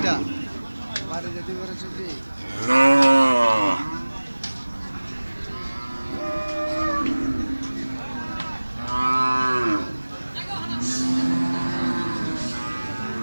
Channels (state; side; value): inverted; both; correlation -1.00